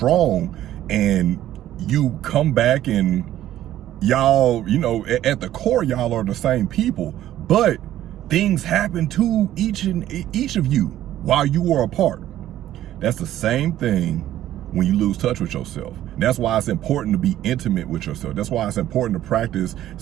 and you come back and y'all, you know, at the core, y'all are the same people, but things happen to each of you while you were apart. That's the same thing when you lose touch with yourself. That's why it's important to be intimate with yourself. That's why it's important to practice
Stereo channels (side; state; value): left; quieter; 12.9 dB